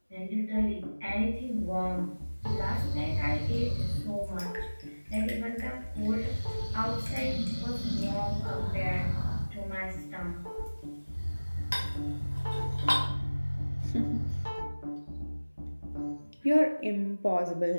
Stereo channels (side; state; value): both; inverted; correlation -1.00